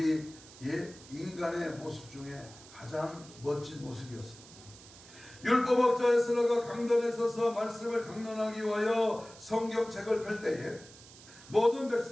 인간의 모습 중에 가장 멋진 모습이었습니다. 율법학자 에스라가 강단에 서서 말씀을 강론하기 위하여 성경책을 펼 때에 모든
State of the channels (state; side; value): noise; right; hiss, 20 dB below the sound